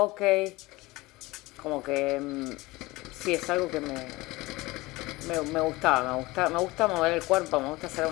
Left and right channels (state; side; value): quieter; right; 20.9 dB